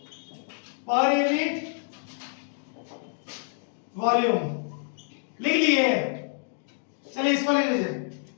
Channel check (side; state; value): right; silent; 60 dB below the other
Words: per unit volume। लिख लिए। चलिए इसको लिख लीजिए,